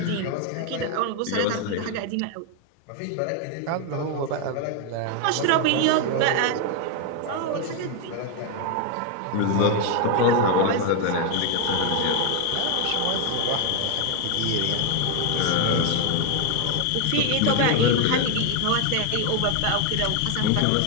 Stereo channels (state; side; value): different; both; correlation 0.01